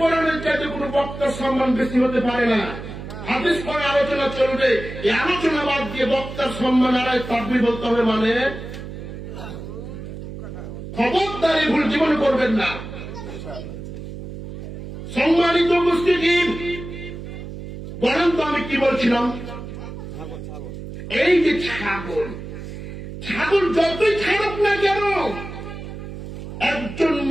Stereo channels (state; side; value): noise; right; hum, 10 dB below the sound